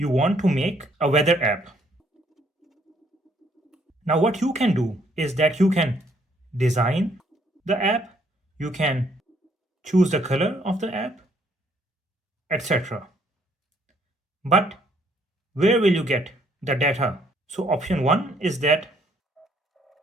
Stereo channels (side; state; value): both; normal; correlation 0.67